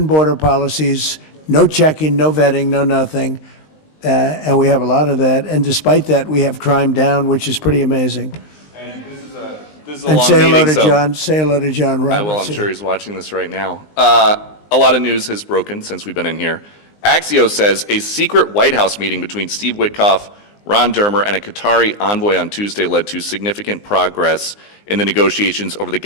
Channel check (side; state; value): right; late; 19 ms